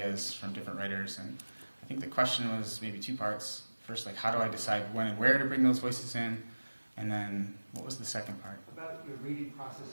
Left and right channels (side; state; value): both; inverted; correlation -1.00